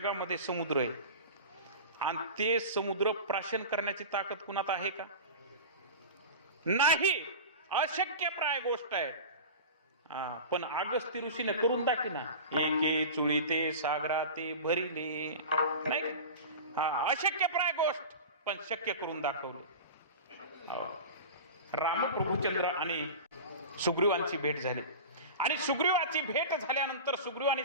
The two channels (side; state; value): both; inverted; correlation -0.31